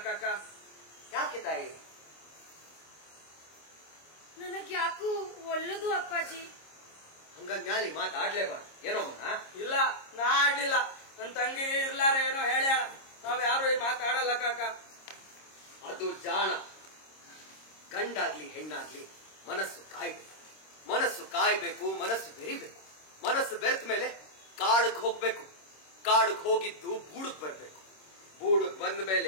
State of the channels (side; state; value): right; late; 26 ms